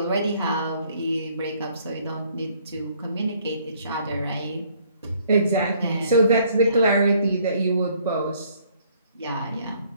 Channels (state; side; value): inverted; both; correlation -0.63